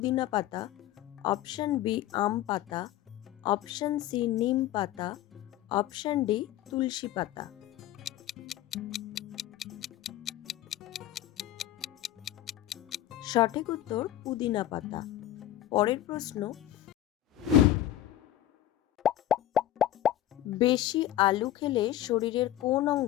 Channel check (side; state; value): right; quieter; 13.2 dB